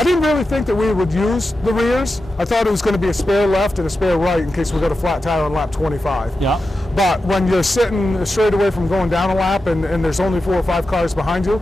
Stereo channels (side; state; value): both; normal; correlation 0.91